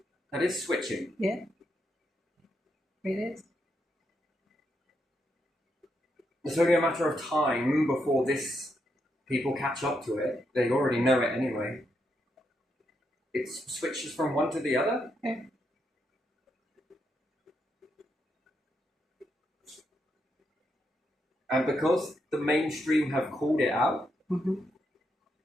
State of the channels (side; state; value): both; normal; correlation 0.81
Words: That is switching. Yeah. It is. It's only a matter of time before people catch up to it. They already know it anyway. it switches from one to the other. Yeah. And because the mainstream have called it out,